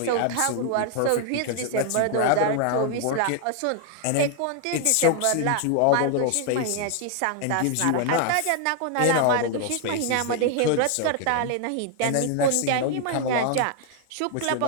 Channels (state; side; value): different; both; correlation 0.00